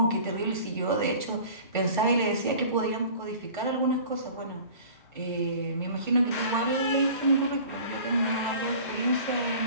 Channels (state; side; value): inverted; both; correlation -0.44